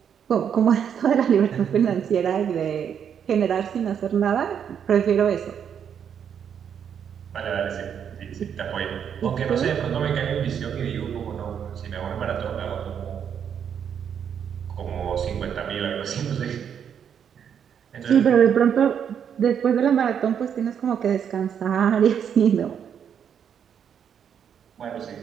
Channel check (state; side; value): quieter; left; 8.1 dB